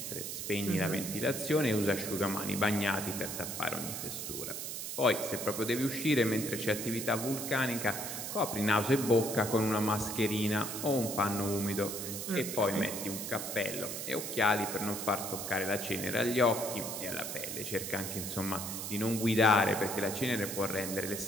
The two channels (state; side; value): noise; right; hiss, 5 dB below the sound